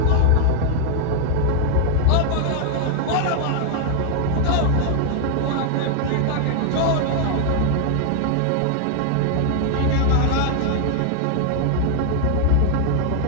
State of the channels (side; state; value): both; different; correlation 0.00